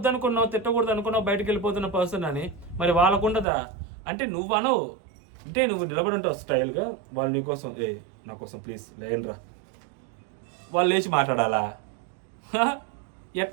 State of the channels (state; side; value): drops out; left; at 3.5 s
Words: తిట్టకూడదు అనుకున్నావు బయటకు వెళ్ళిపోతున్న పర్సన్ అని, మరి వాళ్ళకు ఉండదా? అంటే నువ్వు అనవు, అంటే నువ్వు నిలబడి ఉంటావు స్టైల్గా, వాళ్ళు నీకోసం నా కోసం ప్లీజ్ లేనరా, వాళ్ళు లేచి మాట్లాడాలా?